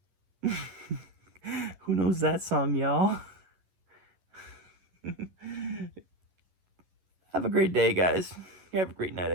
Who knows that song, y'all? Have a great day, guys. Have a great night,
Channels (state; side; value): late; left; 11 ms